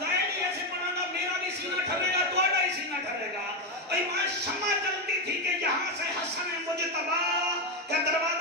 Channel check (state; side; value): normal; both; correlation 0.09